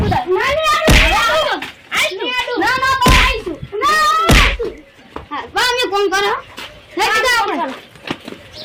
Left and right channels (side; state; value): both; identical; correlation 1.00